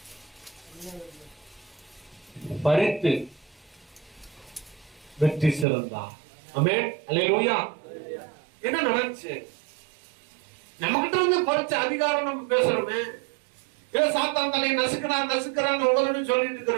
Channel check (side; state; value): left; drops out; at 5.7 s